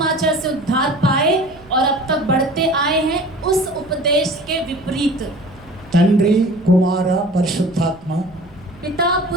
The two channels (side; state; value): right; noise; rumble, 24 dB below the sound